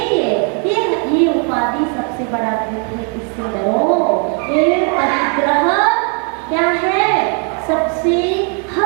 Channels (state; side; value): quieter; left; 39.6 dB